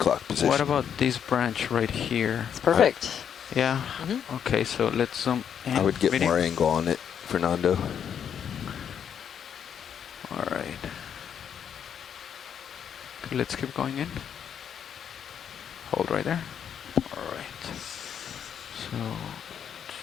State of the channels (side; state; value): right; quieter; 8.3 dB